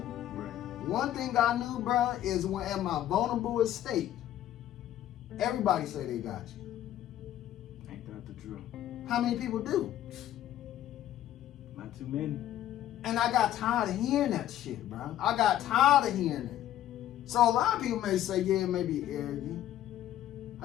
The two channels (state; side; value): quieter; right; 12.4 dB